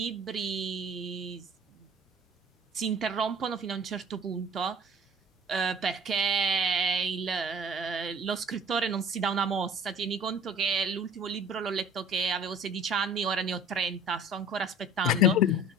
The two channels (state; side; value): normal; both; correlation 0.47